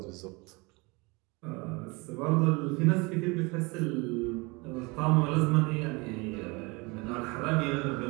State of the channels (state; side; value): quieter; left; 26.9 dB